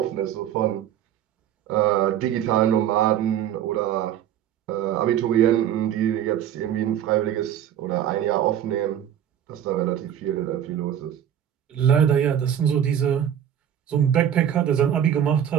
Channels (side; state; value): left; quieter; 10.1 dB